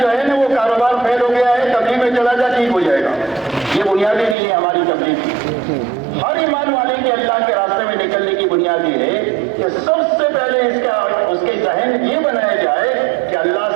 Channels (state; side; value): drops out; left; at 4.4 s